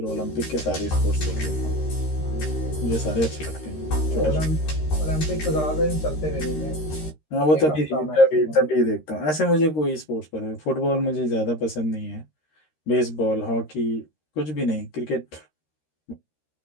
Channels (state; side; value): late; right; 13 ms